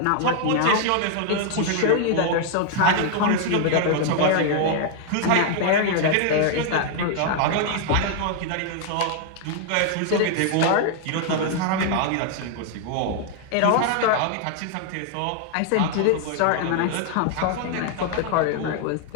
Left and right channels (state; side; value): different; both; correlation 0.00